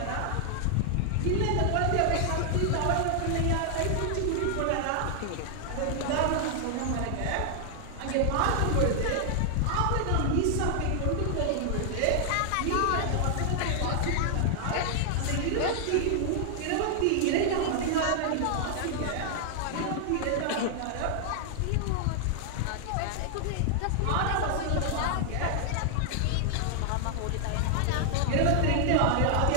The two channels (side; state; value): both; different; correlation 0.00